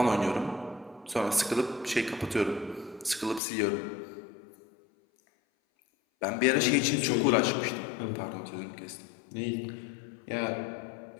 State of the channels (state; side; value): drops out; right; at 3.4 s